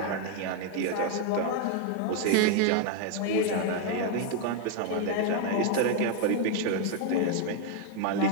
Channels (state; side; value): different; both; correlation 0.01